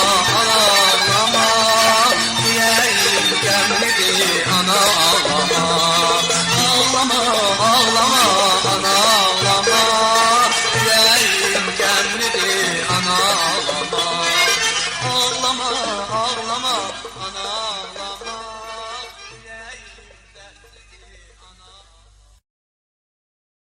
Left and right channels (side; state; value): both; identical; correlation 1.00